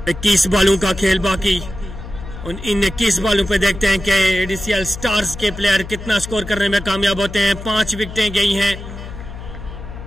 21 बॉलों का खेल बाकी। इन 21 बॉलों पे देखते हैं कि एडीसीएल स्टार्स के प्लेयर कितना स्कोर करने में कामयाब होते हैं। 5 विकेटें गई हैं,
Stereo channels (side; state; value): left; noise; hum, 11 dB below the sound